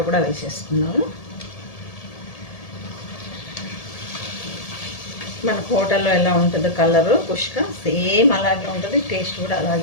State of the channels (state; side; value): late; right; 1.7 ms